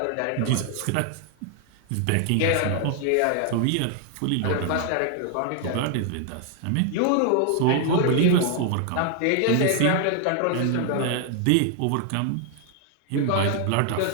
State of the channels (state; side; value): different; both; correlation 0.00